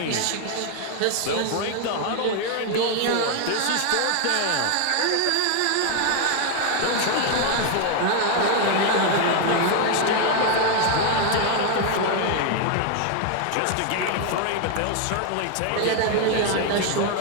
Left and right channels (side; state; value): both; different; correlation 0.01